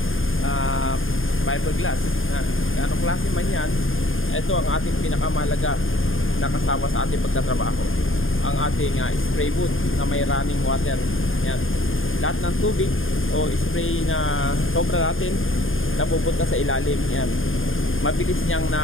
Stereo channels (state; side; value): late; right; 0.59 ms